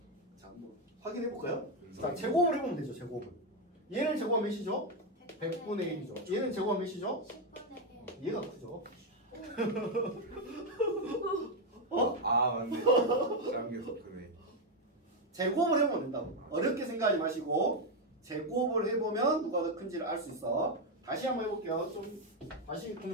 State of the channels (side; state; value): both; normal; correlation 0.05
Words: 자 한번 확인해 볼까요? 분수. 자 제곱을 해보면 되죠. 제곱을. 얘를 제곱하면 몇이죠? 100분의 1이죠. 얘는 제곱하면 몇이죠? 10분의 1. 얘가 크죠. 아 맞네. 작은 게 더 크네. 제곱을 해보면 된다고. 어렵게 생각하지 마시고 제곱을 해보면 누가 더 큰지를 알 수 있어. 다시 한번 해볼게요. 좀 다시